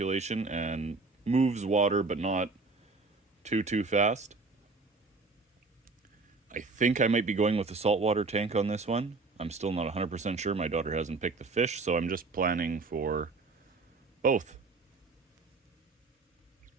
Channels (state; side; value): quieter; left; 3.9 dB